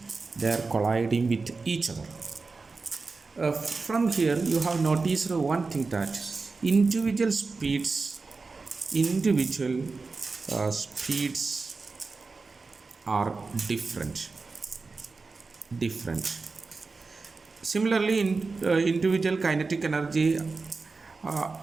They are colliding with each other. From here, you have noticed one thing that individual speeds, individual speeds are different. Similarly, individual kinetic energy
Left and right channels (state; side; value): quieter; left; 4.1 dB